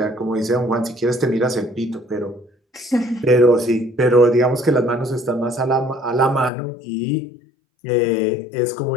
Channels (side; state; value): right; drops out; at 6.5 s